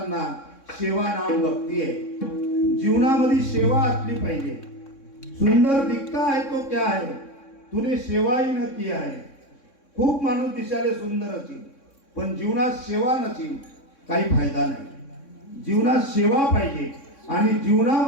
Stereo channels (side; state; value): right; late; 3.6 ms